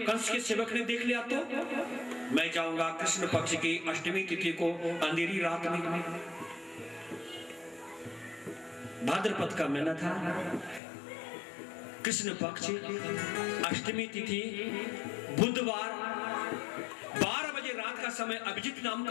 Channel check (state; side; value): drops out; right; at 10.8 s